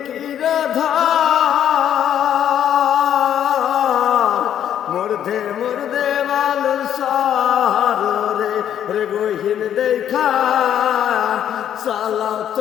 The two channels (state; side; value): quieter; right; 10.0 dB